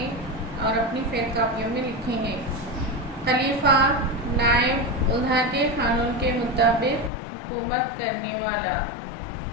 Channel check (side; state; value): right; drops out; at 7.1 s